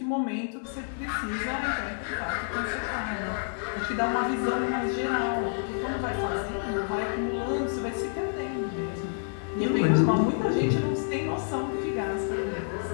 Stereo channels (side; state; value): right; silent; digital silence